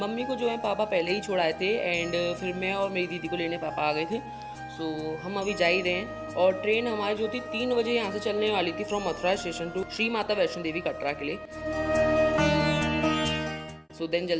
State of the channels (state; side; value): identical; both; correlation 1.00